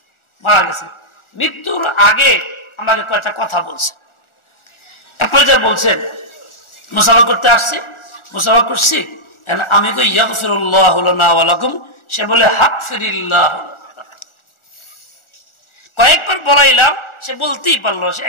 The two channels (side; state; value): right; late; 1.4 ms